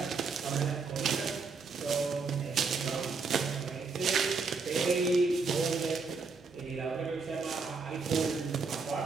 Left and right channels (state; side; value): quieter; left; 4.6 dB